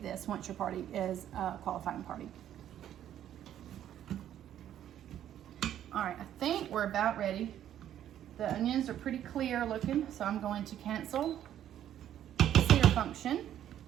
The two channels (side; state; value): left; quieter; 11.0 dB